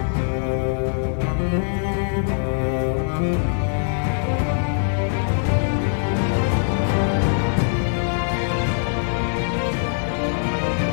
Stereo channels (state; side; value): silent; right; digital silence